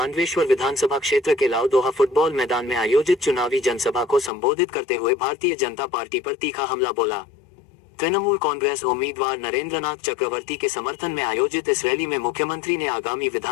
विधानसभा क्षेत्र के लाउदोहा फुटबॉल मैदान में आयोजित चुनावी जनसभा को संबोधित करते हुए भारतीय जनता पार्टी पर तीखा हमला बोला। तृणमूल कांग्रेस उम्मीदवार नरेंद्रनाथ चक्रवर्ती के समर्थन में आयोजित इस रैली में मुख्यमंत्री ने आगामी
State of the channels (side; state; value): right; drops out; at 4.3 s